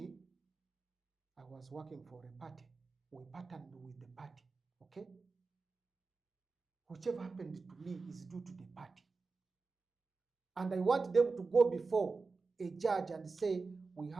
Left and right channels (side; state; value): left; quieter; 4.2 dB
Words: I was working for a party. We partnered with the party. Okay. Whichever happened to me is due to the party. And I want them to go before a judge and say, we